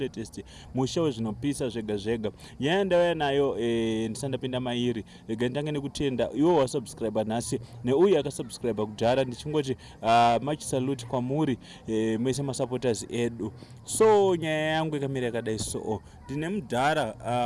musha zvinopisa zvega zvega. Nyaya ndauya nayo ndisandapinda mairi. Ndange nekutenda iwo wasubscribe nhasi neuye akasubscribe kudhara, ndichingoti much salute kwamuri mese masupporters edu. So nyaya yangu ikamira yakadai so. Ndine Mudhara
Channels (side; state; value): both; identical; correlation 1.00